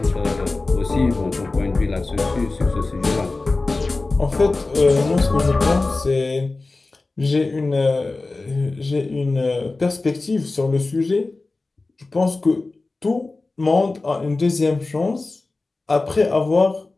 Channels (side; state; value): right; quieter; 3.4 dB